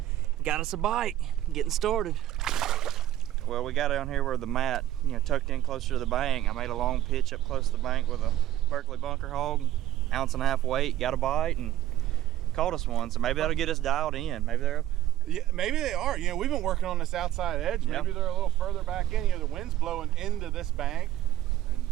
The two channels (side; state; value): left; quieter; 13.4 dB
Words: got us a bite. Getting started. Well, we got down here where the mat, tucked in closer to the bank. I made a long pitch up close to the bank with a Berkeley bunker hog, 1.5 ounce weight, got a bite and caught us one. So maybe that'll get us dialed in. Maybe they're up. Yeah, maybe they are. We've been working on this outside edge. Maybe they're a little further back in. The wind's blowing into this bank. And